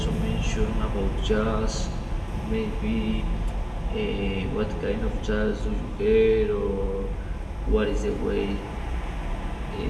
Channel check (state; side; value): identical; both; correlation 1.00